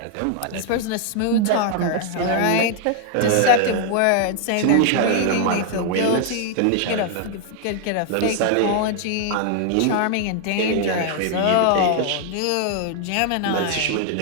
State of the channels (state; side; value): different; both; correlation 0.00